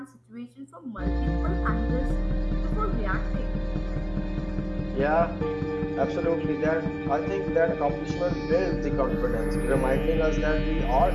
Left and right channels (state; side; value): identical; both; correlation 1.00